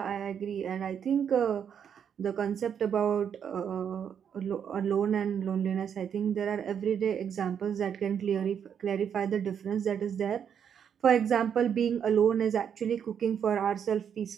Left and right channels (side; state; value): left; quieter; 8.0 dB